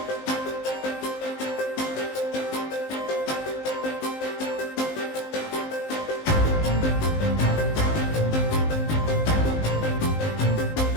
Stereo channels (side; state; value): right; late; 19 ms